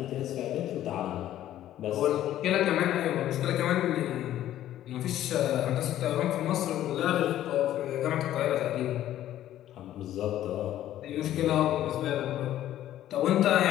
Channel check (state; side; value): quieter; right; 12.7 dB